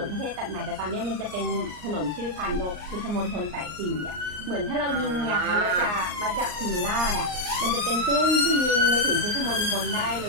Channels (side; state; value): left; late; 39 ms